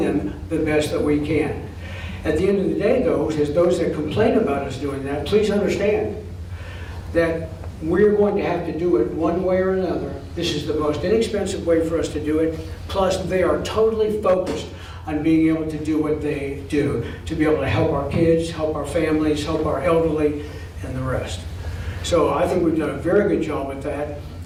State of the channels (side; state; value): both; identical; correlation 1.00